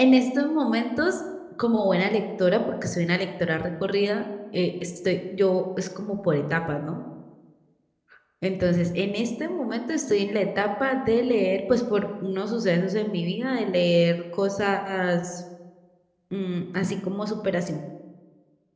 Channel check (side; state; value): both; identical; correlation 1.00